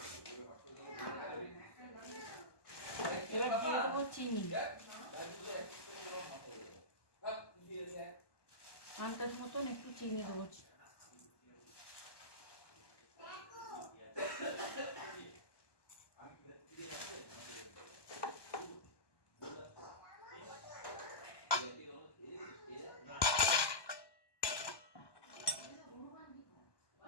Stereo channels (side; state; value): right; late; 1.1 ms